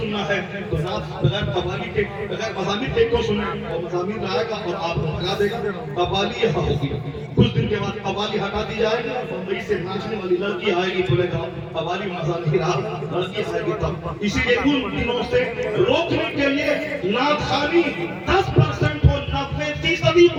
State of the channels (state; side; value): identical; both; correlation 1.00